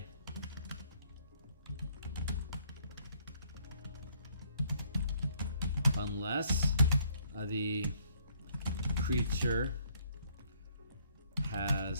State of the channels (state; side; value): inverted; both; correlation -0.66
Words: unless the creature